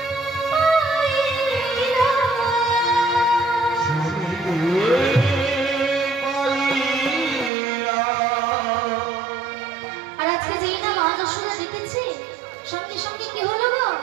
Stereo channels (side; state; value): left; drops out; at 7.5 s